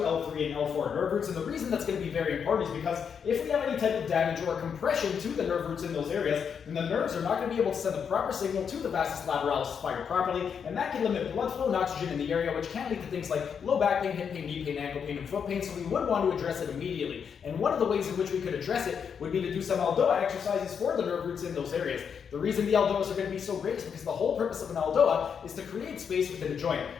and L4 nerve roots. And the reason that's going to be very important is because if we have any type of damage or compression to the nerve roots in those areas, then the nerves are not going to be able to send the proper signal to the Vastus Lateralis to fire properly, and that can limit blood flow and oxygen in the area, which can lead to things like low back pain, hip pain, knee pain, ankle pain, and foot pain. So we would want to address it immediately. And one of the ways in which we could address it would be to do some ELDOA exercises for the nerve roots in those areas. The reason the ELDOAs are going to be so great is because the whole purpose of an ELDOA is to create space within a joint.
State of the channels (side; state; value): right; quieter; 7.0 dB